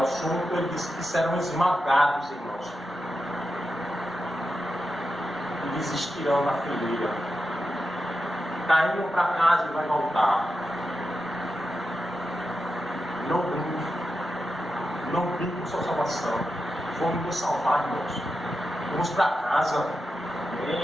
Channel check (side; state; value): both; normal; correlation 0.89